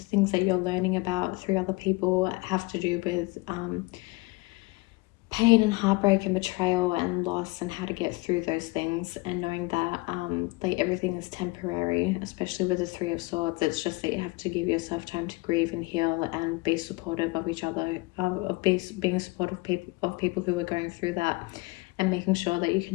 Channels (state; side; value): quieter; right; 23.7 dB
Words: things that you're learning about through other people have to do with pain and heartbreak and betrayal and loss, and how to get through those things, and knowing that like everything is temporary, especially with the Three of Swords. It's just that you have to give yourself time to grieve and heal and be supportive of each other, being supportive of people who are going through that, and making sure that you